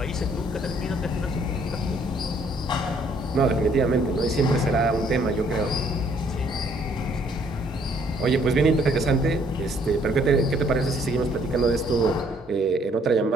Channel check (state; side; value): normal; both; correlation 0.64